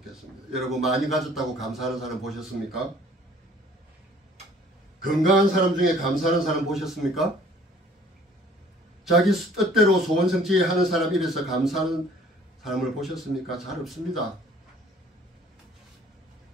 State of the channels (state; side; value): normal; both; correlation 0.55